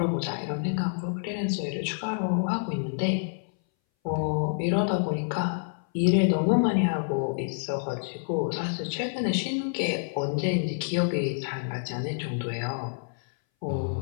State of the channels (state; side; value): silent; right; 59 dB below the other